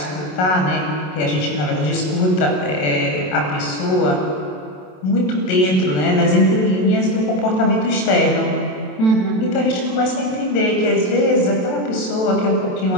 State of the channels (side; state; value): right; late; 27 ms